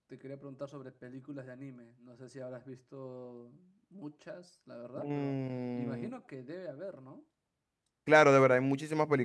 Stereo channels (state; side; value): identical; both; correlation 1.00